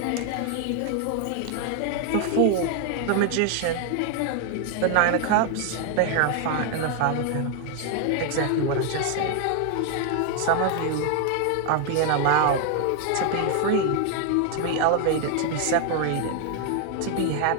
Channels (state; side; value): different; both; correlation 0.00